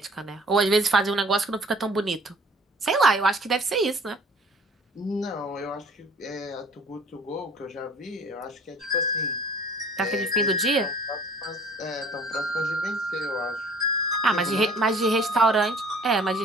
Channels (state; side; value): normal; both; correlation 0.50